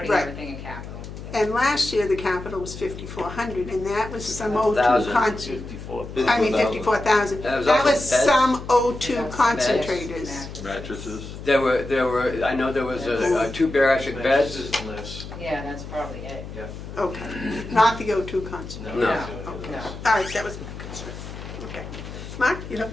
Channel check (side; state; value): left; noise; hum, 11 dB below the sound